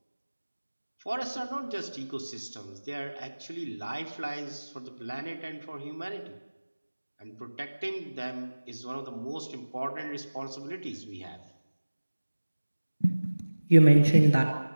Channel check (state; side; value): inverted; both; correlation -1.00